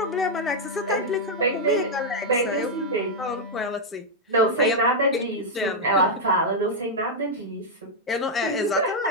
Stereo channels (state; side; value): normal; both; correlation -0.03